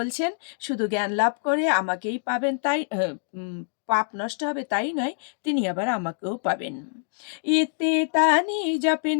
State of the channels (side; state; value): right; silent; digital silence